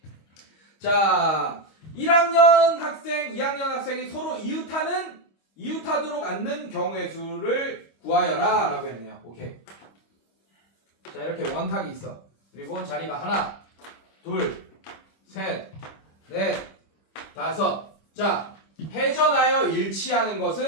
자 1학년 학생 2학년 학생이 서로 이웃하도록 앉는 경우의 수를 구하여라 라고 했네요. 오케이. 자 이렇게 원탁이 있어. 그리고 자리가 하나 둘 셋 넷 5. 자, 회전하여 일치하는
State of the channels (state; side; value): late; right; 25 ms